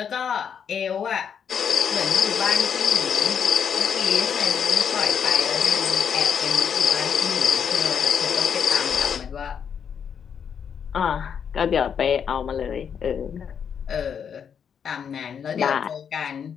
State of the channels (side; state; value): right; quieter; 7.5 dB